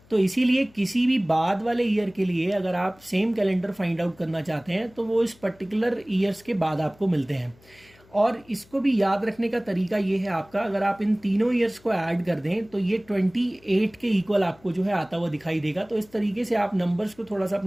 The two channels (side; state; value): left; noise; hum, 28 dB below the sound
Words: तो इसीलिए किसी भी बाद वाले ईयर के लिए अगर आप सेम कैलेंडर फाइंड आउट करना चाहते हैं तो वो इस पर्टिकुलर ईयर्स के बाद आपको मिलते हैं। और इसको भी याद रखने का तरीका ये है आपका, अगर आप इन तीनों ईयर्स को ऐड कर दें तो ये 28 के इक्वल आपको जो है आता हुआ दिखाई देगा। तो इस तरीके से आप नंबर्स को थोड़ा सा